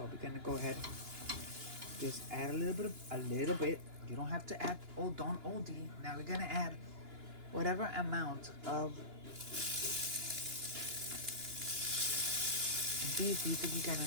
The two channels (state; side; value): late; left; 2.9 ms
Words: we're gonna go ahead, just add a little bit. You don't have to add, oh, don't OD. Now we're gonna add whatever amount of beef you think you're